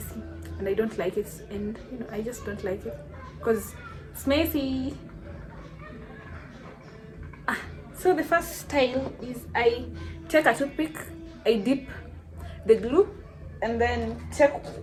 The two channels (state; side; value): identical; both; correlation 1.00